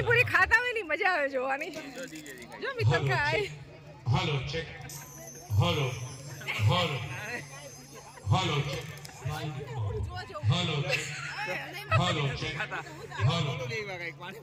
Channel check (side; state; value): both; identical; correlation 1.00